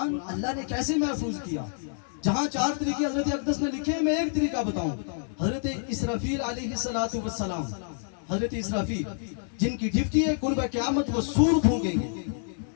اللہ نے کیسے محفوظ کیا. جہاں 4 طریقے حضرت اقدس نے لکھے ہیں، میں ایک طریقہ بتاؤں. حضرت اسرافیل علیہ السلام، حضرت اسرافیل جن کی ڈیوٹی ہے قرب قیامت وہ سور پھونکیں گے،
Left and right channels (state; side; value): silent; right; digital silence